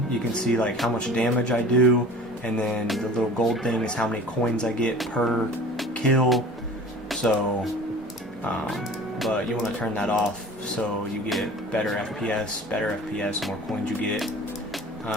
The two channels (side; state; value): both; normal; correlation 0.43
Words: you can see like how much damage I do, and then the little gold thing is how many coins I get per kill. So, but you want to turn that off so you get better FPS, more coins you get.